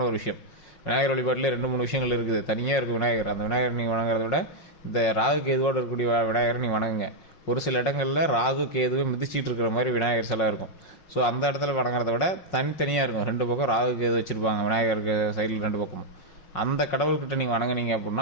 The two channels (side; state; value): right; late; 5.5 ms